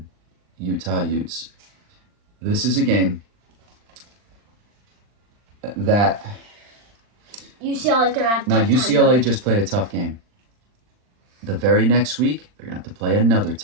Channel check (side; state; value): left; late; 39 ms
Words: Utah Utes. This is a game that UCLA is gonna have. Now UCLA just played a tough game. The very next week, they're gonna have to play another